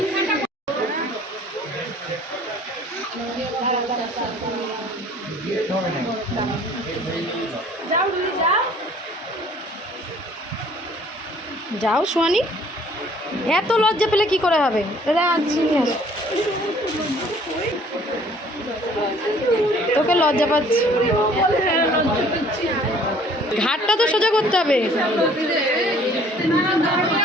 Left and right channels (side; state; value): both; normal; correlation 0.55